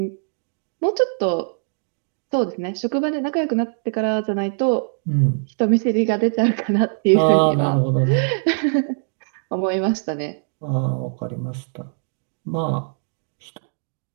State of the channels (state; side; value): silent; left; digital silence